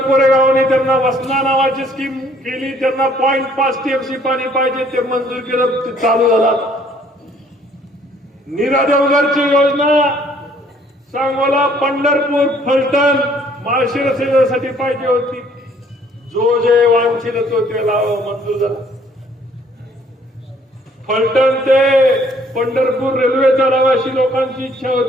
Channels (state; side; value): normal; both; correlation 0.61